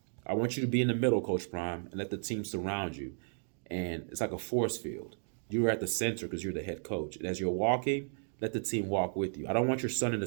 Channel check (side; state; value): left; silent; digital silence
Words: I want you to be in the middle, Coach Prime, and let the team surround you. And it's like a force field. You're at the center because you're the head coach. And as you're walking, let the team walk with you. I don't want your son in the